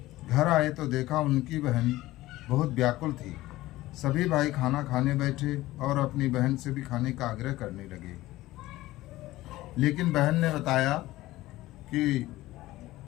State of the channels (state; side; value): quieter; right; 17.2 dB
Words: घर आए तो देखा उनकी बहन बहुत व्याकुल थी। सभी भाई खाना खाने बैठे और अपनी बहन से भी खाने का आग्रह करने लगे, लेकिन बहन ने बताया कि